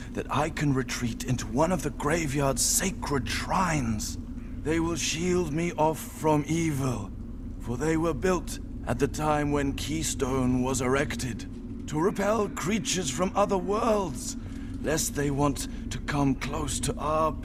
that I can retreat into one of the graveyard's sacred shrines. They will shield me off from evil, for they were built at the time when Keystone was erected, to repel creatures from other worlds, lest they want to come close to our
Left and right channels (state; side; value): identical; both; correlation 1.00